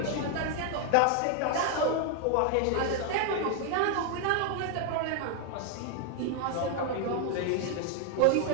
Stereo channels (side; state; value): both; different; correlation 0.00